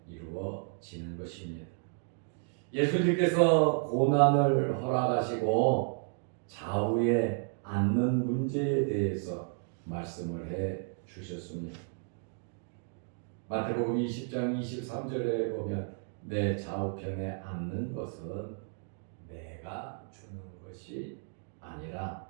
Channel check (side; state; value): left; silent; 56 dB below the other